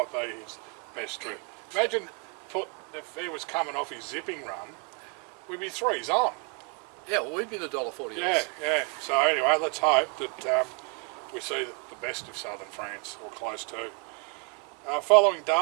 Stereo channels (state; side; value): quieter; left; 32.2 dB